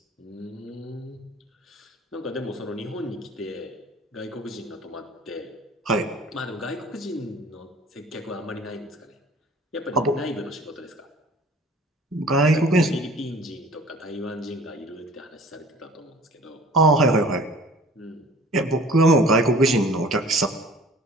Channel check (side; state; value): both; normal; correlation 0.48